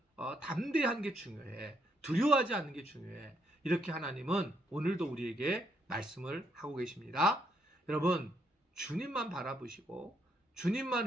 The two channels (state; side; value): normal; both; correlation 0.74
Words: 담대한 게 중요해. 두려워하지 않는 게 중요해. 이렇게 하나님은 오늘도 우리에게 말씀을 하고 계십니다. 여러분, 주님만 바라보시고